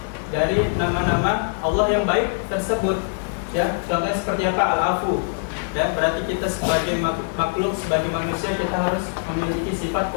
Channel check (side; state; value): right; silent; digital silence